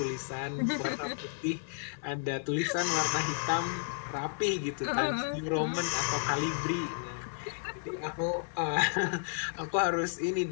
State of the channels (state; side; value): silent; right; digital silence